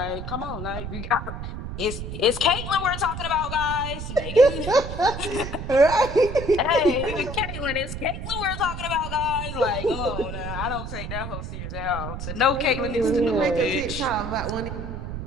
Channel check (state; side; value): noise; right; rumble, 7 dB below the sound